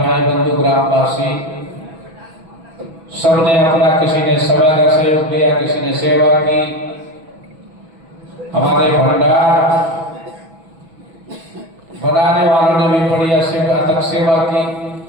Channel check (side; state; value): left; late; 6.1 ms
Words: बंधु ग्रामवासी सबने अपना, किसी ने समय का सहयोग दिया, किसी ने सेवा की। हमारे भंडार बनाने वालों ने भी बड़ी अथक सेवा की।